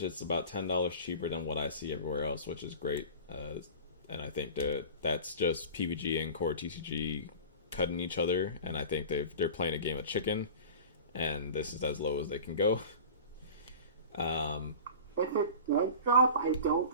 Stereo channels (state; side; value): inverted; both; correlation -0.36